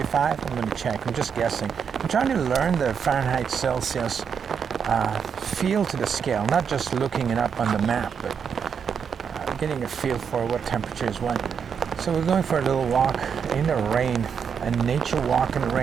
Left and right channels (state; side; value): quieter; left; 6.9 dB